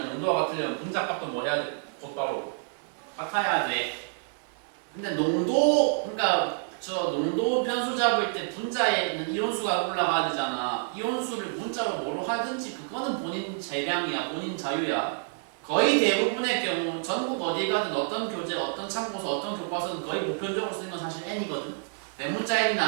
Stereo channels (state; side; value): silent; left; digital silence